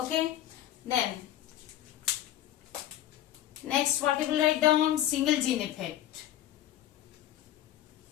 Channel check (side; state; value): right; quieter; 12.7 dB